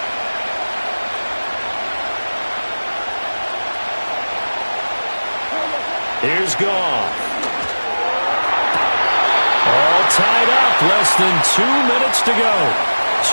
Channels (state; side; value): inverted; both; correlation -1.00